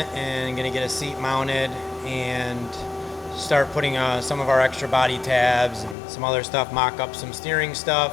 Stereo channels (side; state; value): right; drops out; at 6.0 s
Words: and going to get a seat mounted and start putting some of our extra body tabs and some other stuff, mock up some steering